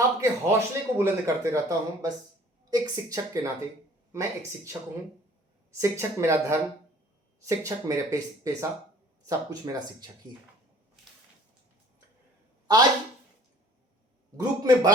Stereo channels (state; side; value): normal; both; correlation 0.52